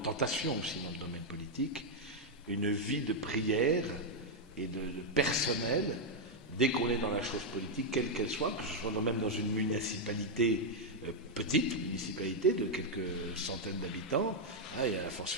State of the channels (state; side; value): normal; both; correlation -0.01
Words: aussi dans le domaine politique, une vie de prière et de personnel, dès qu'on est dans la chose politique, quelle qu'elle soit, que ce soit même dans une municipalité, petite municipalité de quelques centaines d'habitants, et à la